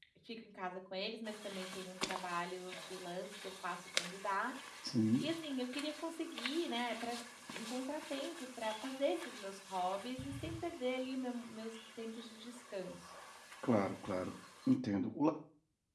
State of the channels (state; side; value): identical; both; correlation 1.00